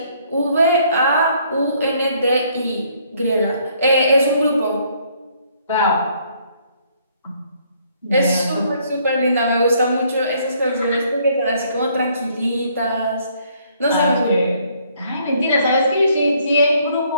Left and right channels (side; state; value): both; inverted; correlation -0.65